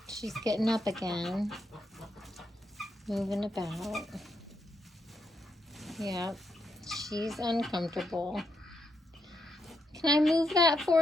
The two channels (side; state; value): both; normal; correlation 0.81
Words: She's getting up again, moving about. Yep, she's uncomfortable. Can I move that